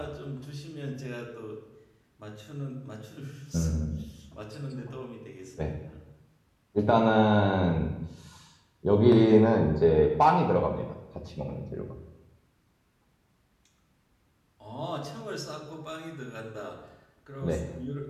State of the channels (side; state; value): both; identical; correlation 1.00